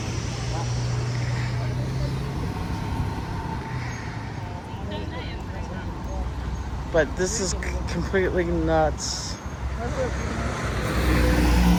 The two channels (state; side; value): identical; both; correlation 1.00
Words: But this is completely nuts.